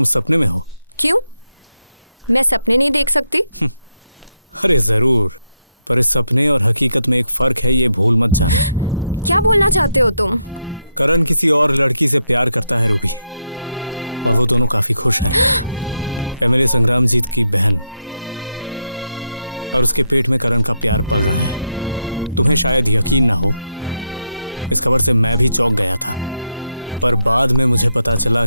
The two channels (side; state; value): both; inverted; correlation -0.81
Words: सपने में हो। क्यों? मैं सपने नहीं देख सकती? अरे जरूर, पर इस सपने और हकीकत में एक फर्क है, ये भूल मत जाना। क्या बोलना चाहते हो तुम? करण किसी और लड़की से प्यार करता है रूबी, और वो दोनों काफी खुश हैं। एमएलए संग्रामजीत की बहन, और उसके पेट में करण का प्यार पल रहा है। तुम्हें शायद यकीन ना हो, इस खबर से मैं भी चौंक गया था, पर बाद में मुझे पता चला